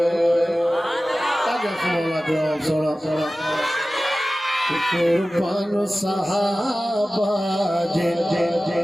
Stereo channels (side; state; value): both; normal; correlation 0.96